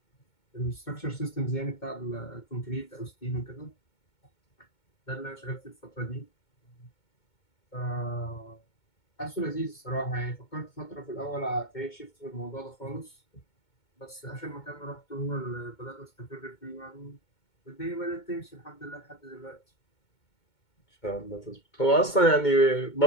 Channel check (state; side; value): late; right; 2.2 ms